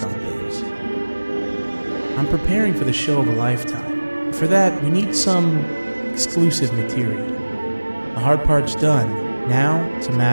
on things. I'm preparing for the show of a lifetime. For that, we need some exclusive material. The hard part's done. Now, it's a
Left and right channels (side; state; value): both; inverted; correlation -1.00